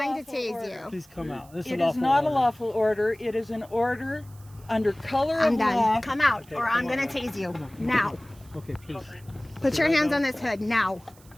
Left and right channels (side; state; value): right; noise; hiss, 26 dB below the sound